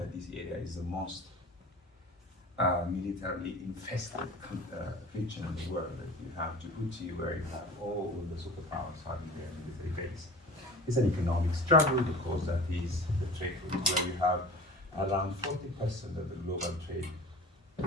this area is the most militarily infested region in the world. That you have Djibouti, where you have all the superpowers having their military base. It's an economic struggle because that is the trade route where you have around 40% of the global trade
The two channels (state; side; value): normal; both; correlation 0.39